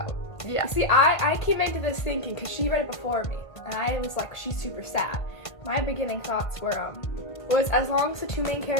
Yeah. See, I came into this thinking, because she read it before me, and I was like, she's super sad. My beginning thoughts were, was as long as the two main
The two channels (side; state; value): right; late; 1.5 ms